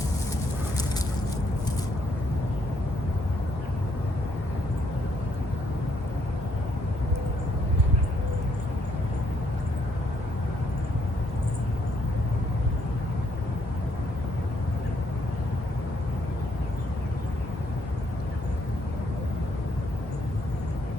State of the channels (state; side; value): normal; both; correlation 0.72